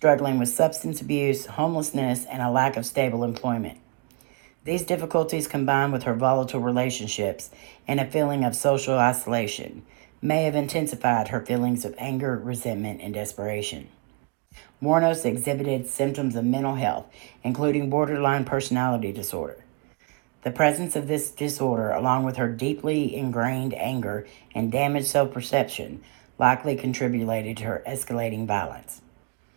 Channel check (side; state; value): left; quieter; 28.3 dB